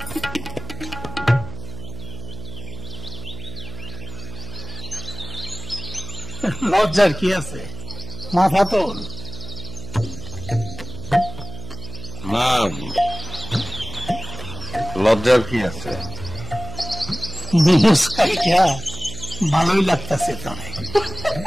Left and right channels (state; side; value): noise; right; hum, 11 dB below the sound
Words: লজ্জার কি আছে, মাথা তোল। না, লজ্জার কি আছে? মুস্কাইটা ভালোই লাগতেছে তোরে।